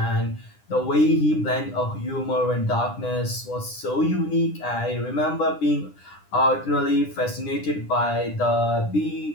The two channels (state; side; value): late; right; 9.9 ms